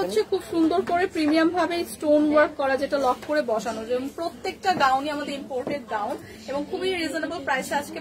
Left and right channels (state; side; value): identical; both; correlation 1.00